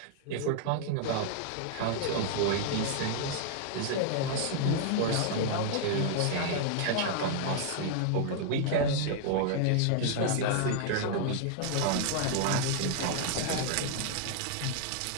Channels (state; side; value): different; both; correlation 0.00